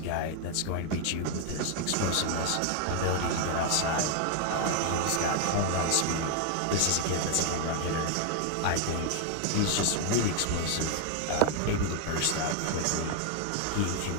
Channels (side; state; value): both; different; correlation 0.00